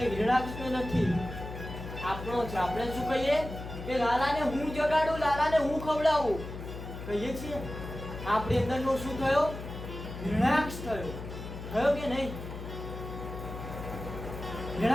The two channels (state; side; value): noise; left; hum, 9 dB below the sound